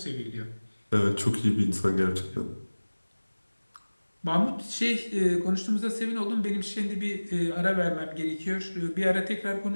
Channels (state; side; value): inverted; both; correlation -1.00